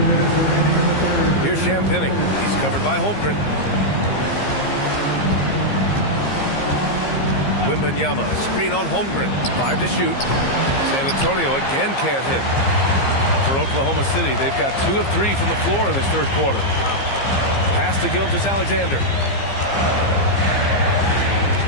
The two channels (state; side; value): late; right; 15 ms